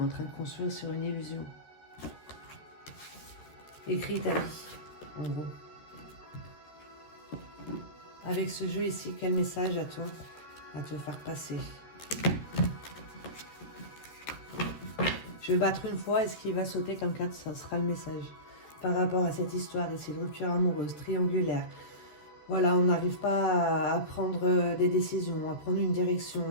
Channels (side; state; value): right; late; 13 ms